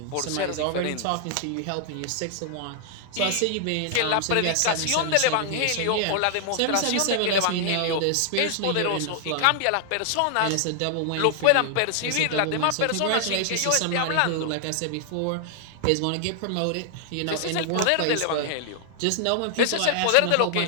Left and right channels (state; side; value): different; both; correlation 0.00